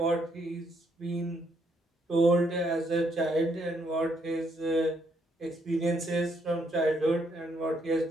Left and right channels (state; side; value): normal; both; correlation 0.73